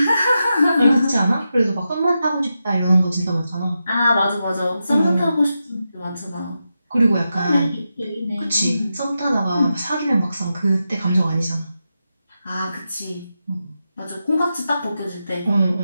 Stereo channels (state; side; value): inverted; both; correlation -0.89